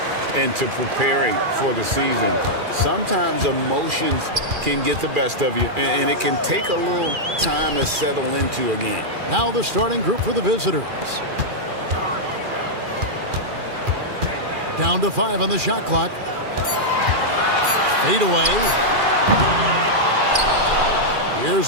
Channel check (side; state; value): left; late; 2.4 ms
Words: into preparing for the season. Sometimes emotions can get the best of you, and it can take a little time to settle into a game. Now the starting group for the visitors. Down to 5 on the shot clock. Fade away.